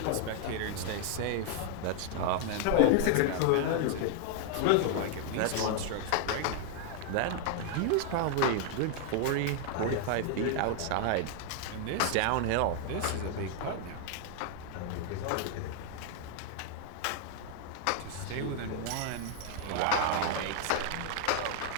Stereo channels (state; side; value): different; both; correlation 0.00